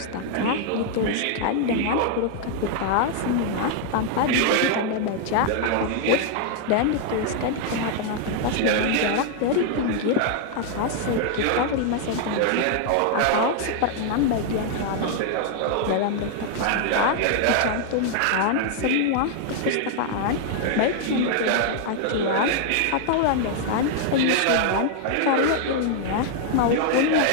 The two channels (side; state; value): both; different; correlation 0.00